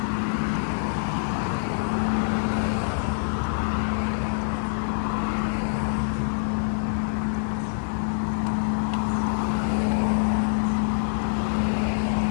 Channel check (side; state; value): right; silent; digital silence